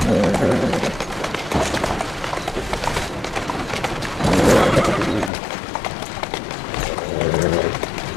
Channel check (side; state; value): right; drops out; at 5.3 s